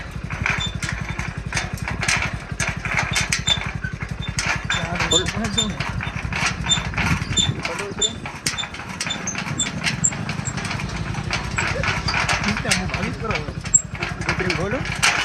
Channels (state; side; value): identical; both; correlation 1.00